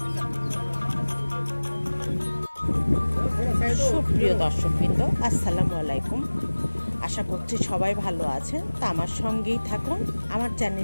সুপ্রিয় দর্শকবৃন্দ, আসসালামু আলাইকুম। আশা করছি সবাই ভালো আছেন। তা আমার সঙ্গেই থাকুন, আমার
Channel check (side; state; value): both; inverted; correlation -1.00